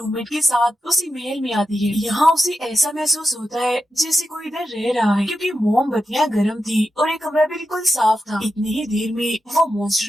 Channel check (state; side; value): normal; both; correlation 0.89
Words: के साथ उसी महल में आती है। यहाँ उसे ऐसा महसूस होता है जैसे कोई इधर रह रहा है, क्योंकि मोमबत्तियां गर्म थी और एक कमरा बिल्कुल साफ था। इतनी ही देर में वो